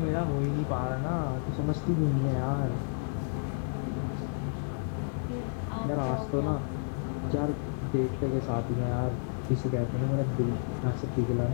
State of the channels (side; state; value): right; silent; digital silence